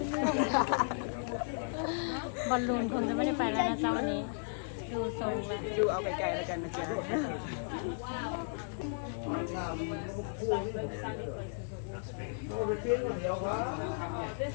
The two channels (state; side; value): silent; right; digital silence